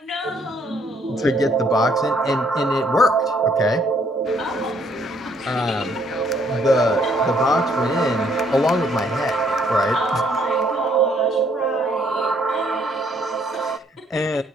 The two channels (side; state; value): both; normal; correlation 0.66